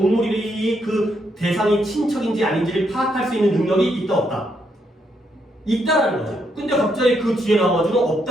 그 대상이 친척인지 아닌지를 파악할 수 있는 능력이 있다 없다? 있다라는 거죠. 근데 갑자기 그 뒤에 나와가지고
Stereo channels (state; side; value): normal; both; correlation 0.77